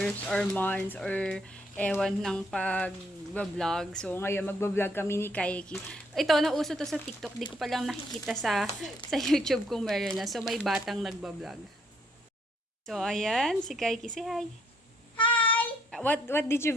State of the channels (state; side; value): normal; both; correlation 0.69